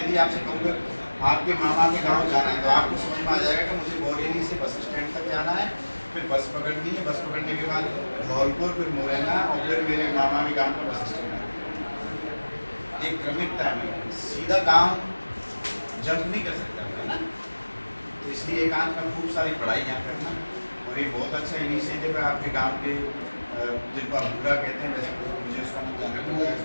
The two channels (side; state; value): both; inverted; correlation -1.00